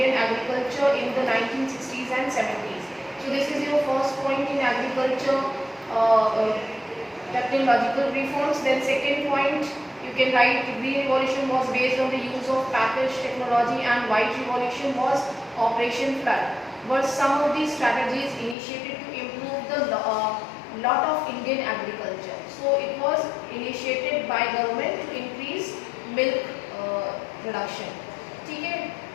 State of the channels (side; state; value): right; drops out; at 18.6 s